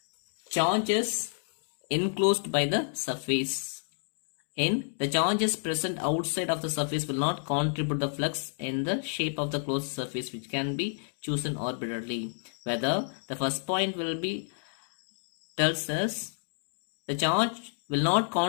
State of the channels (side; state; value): right; silent; digital silence